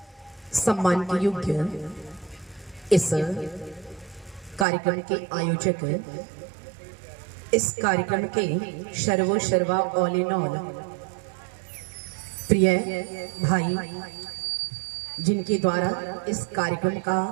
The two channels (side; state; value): left; drops out; at 4.7 s